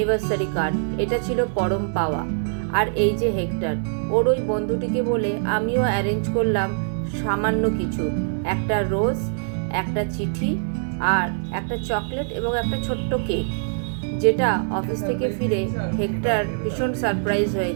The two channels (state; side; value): silent; left; digital silence